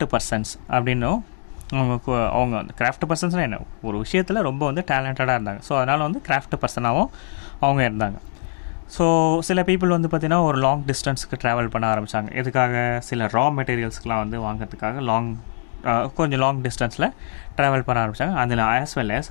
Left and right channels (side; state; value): right; silent; digital silence